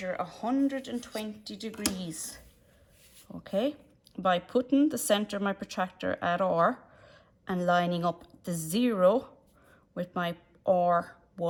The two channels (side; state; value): both; identical; correlation 1.00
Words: 120 degrees okay, by putting the center of my protractor at R and lining up the 0 with my